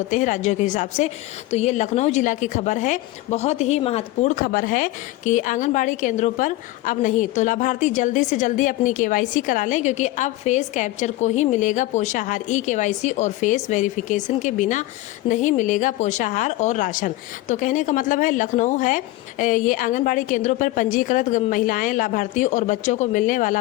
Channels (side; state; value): right; quieter; 17.7 dB